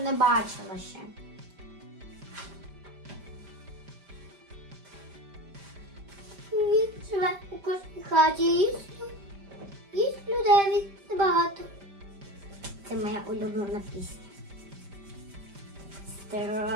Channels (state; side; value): late; left; 5.0 ms